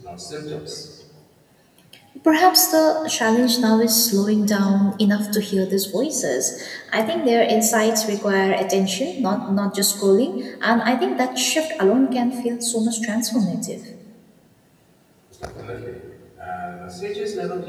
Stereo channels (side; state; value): both; identical; correlation 1.00